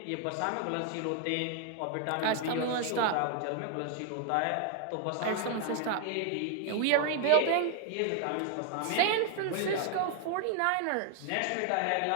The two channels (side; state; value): both; different; correlation 0.00